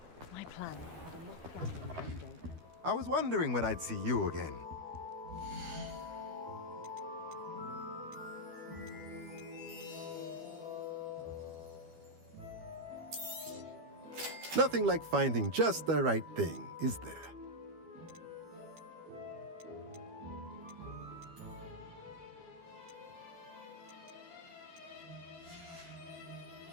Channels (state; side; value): late; left; 12 ms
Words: My plan had a mock gathering one day. I was wondering when I'd see you again. Nothing like finding just the right thing, is there?